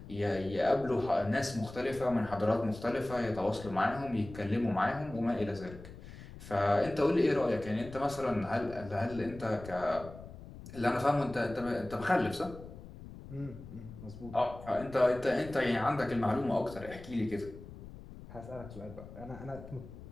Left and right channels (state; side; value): noise; left; rumble, 15 dB below the sound